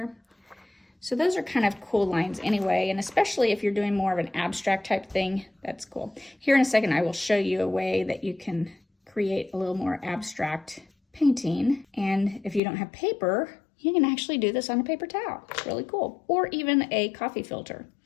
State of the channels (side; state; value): right; drops out; at 12.6 s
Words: So those are kind of cool lines anyway, and especially if you're doing more of an abstract type thing, that's cool. Here in a second, I will show you a way that you can create a little more abstract painting. And if you don't have paper, you can actually do this on a paper towel. It's really cool. Or even a coffee filter.